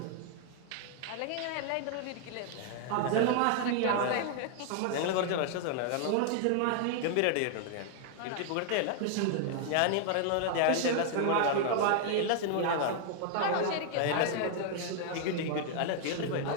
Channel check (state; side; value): different; both; correlation 0.00